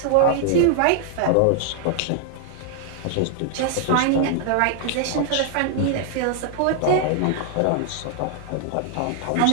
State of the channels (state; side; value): different; both; correlation 0.00